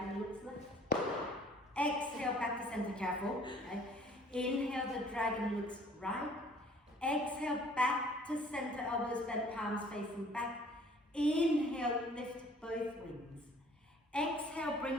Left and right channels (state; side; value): normal; both; correlation 0.55